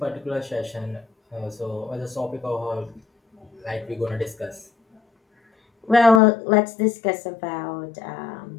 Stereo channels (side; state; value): right; drops out; at 6.2 s